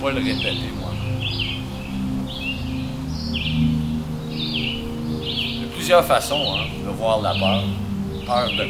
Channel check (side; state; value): both; identical; correlation 1.00